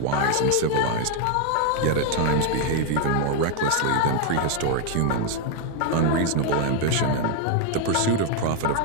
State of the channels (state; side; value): different; both; correlation 0.01